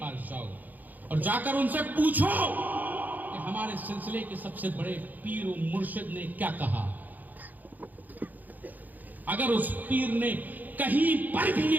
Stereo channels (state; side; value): late; left; 0.083 ms